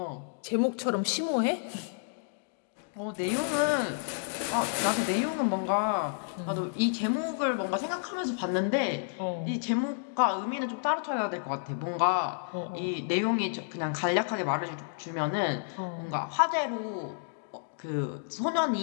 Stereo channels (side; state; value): right; silent; digital silence